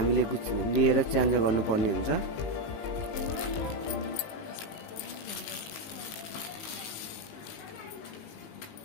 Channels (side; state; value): right; late; 19 ms